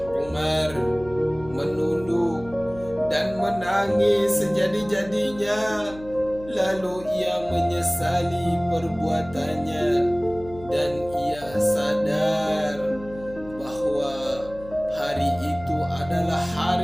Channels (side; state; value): left; noise; hum, 17 dB below the sound